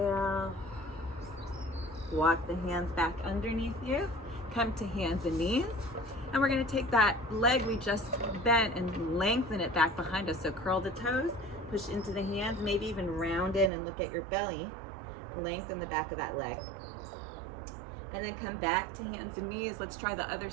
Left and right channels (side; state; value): left; drops out; at 13.7 s